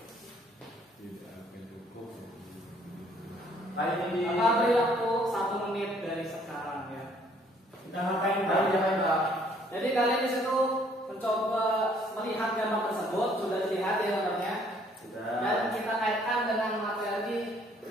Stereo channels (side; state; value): both; normal; correlation 0.62